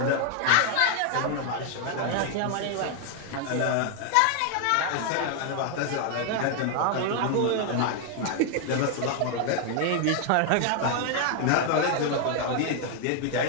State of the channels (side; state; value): both; different; correlation 0.00